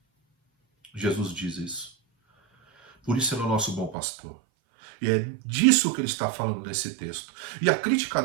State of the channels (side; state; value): left; drops out; at 4.0 s